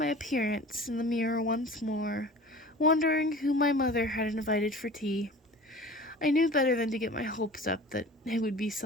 appearance in the mirror once more, wondering who my mother had invited for tea. I knew better than to get my hopes up that it would be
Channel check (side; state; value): both; normal; correlation 0.40